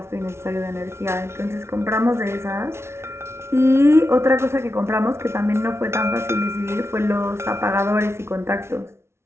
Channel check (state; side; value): late; left; 0.13 ms